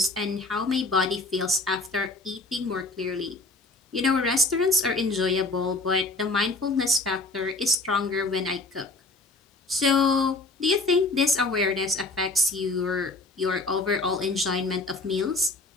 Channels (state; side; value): quieter; right; 3.0 dB